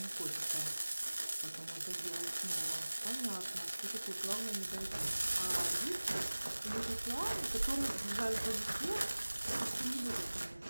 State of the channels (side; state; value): both; inverted; correlation -1.00